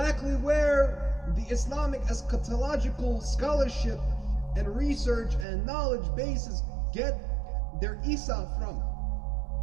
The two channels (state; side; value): drops out; left; at 5.5 s